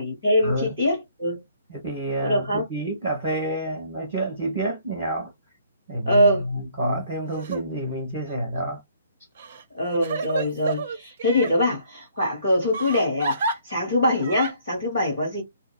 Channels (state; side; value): inverted; both; correlation -0.63